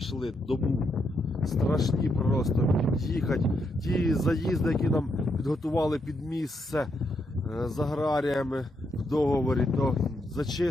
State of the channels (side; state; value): both; normal; correlation 0.79